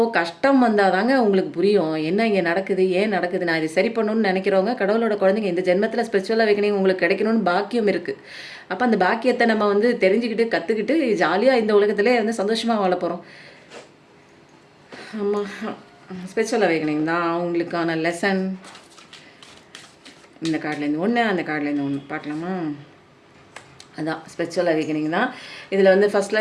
கஷ்டம் வந்தால் தாங்க உங்களுக்கு புரியும் என்ன இங்கே நடக்குது, ஏன் நடக்குது. நான் இதை சரி பண்ணணும்னு நினைக்கிறவங்க கடவுளோட குழந்தைங்க இந்த ஜென்மத்தில் ஸ்பிரிச்சுவல் அவேக்கனிங் உங்களுக்கு கிடைக்கணும்னு பாக்கியம் இருக்குது. அப்போ அந்த பாக்கியத்தை நம்ம வந்து தெரிஞ்சுக்கிட்டு கற்றுக்கிட்டு ஜாலியாக இந்த உலகத்திலே வந்து சந்தோஷமாக வாழ போகிறோம். ஆமாம், ஸ்பிரிச்சுவல் அவேக்கனிங் தான் அவங்களுக்கான லெசன். இந்த கார்ட்லேருந்து ஒன்று, அந்த கார்ட்லேருந்து ஒன்று பார்க்கலாமா? அதான் ஸ்பிரிச்சுவல் அவேக்கனிங் தான். இதில் வந்து ஃபஸ்ட்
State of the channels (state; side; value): identical; both; correlation 1.00